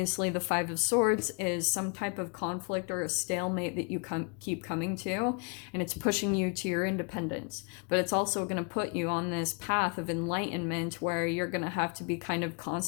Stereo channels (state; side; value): quieter; right; 35.6 dB